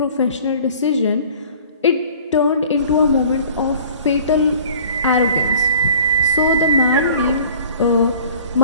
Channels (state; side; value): inverted; both; correlation -0.49